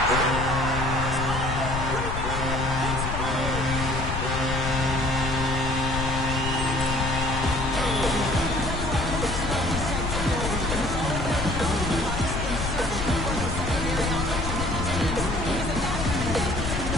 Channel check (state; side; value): noise; left; rumble, 4 dB below the sound